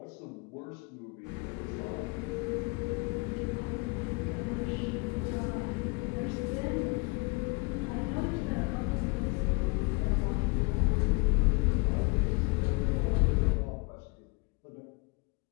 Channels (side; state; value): right; quieter; 29.7 dB